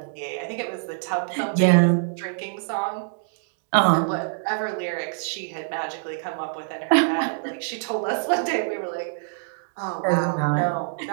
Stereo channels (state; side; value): silent; left; digital silence